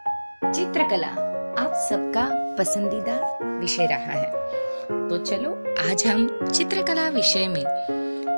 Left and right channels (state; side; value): inverted; both; correlation -1.00